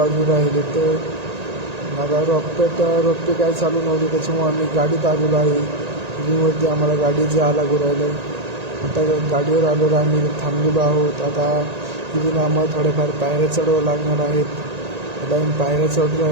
राहिले. तर आता रोपे काय चालू नव्हते, त्याच्यामुळे आम्ही गाडीत आलेलो आहे. रिंगवरती आम्हाला गाडीत जायला लागू राहिलं. आता गाडीवर आल्यावर आम्ही थांबलेलो आहोत. आता इथून आम्हाला थोड्याफार पायऱ्या चढवावं लागणार आहेत. आता आम्ही पायऱ्या चढून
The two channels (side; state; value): left; late; 1.9 ms